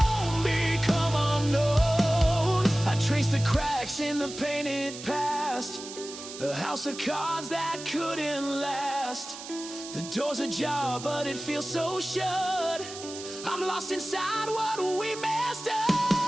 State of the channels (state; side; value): noise; right; hiss, 12 dB below the sound